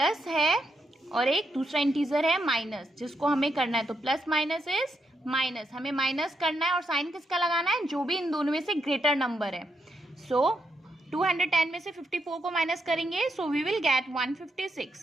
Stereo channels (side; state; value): both; normal; correlation 0.80